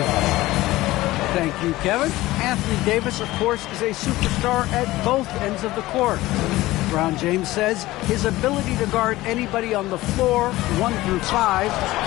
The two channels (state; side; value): quieter; right; 17.8 dB